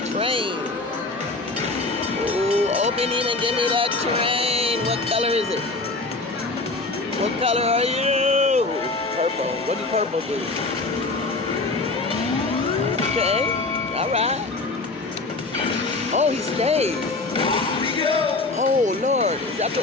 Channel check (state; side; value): quieter; right; 3.4 dB